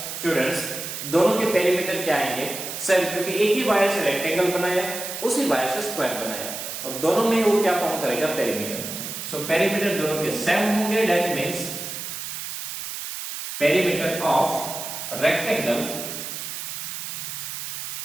दोनों के पेरीमीटर क्या आएंगे? सेम, क्योंकि एक ही वायर से रेक्टेंगल बनाया, उसी वायर से स्क्वायर बनाया और दोनों में वो क्या फॉर्म करेगा? पेरीमीटर। सो पेरीमीटर दोनों के सेम होंगे। That means perimeter of rectangle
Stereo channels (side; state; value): right; noise; hiss, 7 dB below the sound